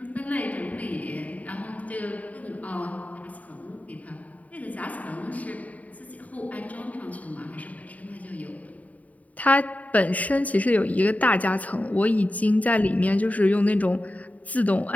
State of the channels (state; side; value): late; right; 0.071 ms